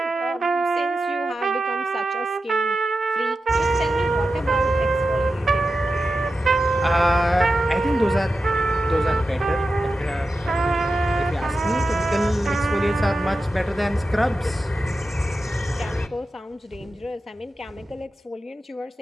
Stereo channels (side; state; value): both; normal; correlation 0.91